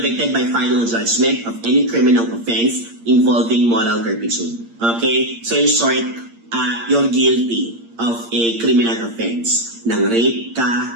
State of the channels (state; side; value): late; left; 8.7 ms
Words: by final judgment of any criminal offense involving moral turpitude. Okay? So, in short, you're guilty of a criminal offense. Nang rape ka,